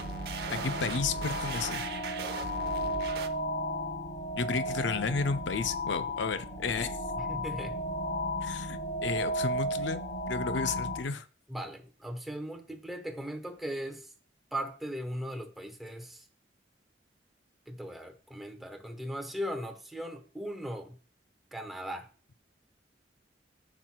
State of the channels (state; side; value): normal; both; correlation 0.11